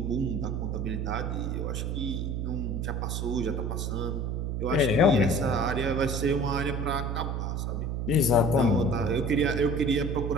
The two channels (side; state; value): right; noise; hum, 1 dB below the sound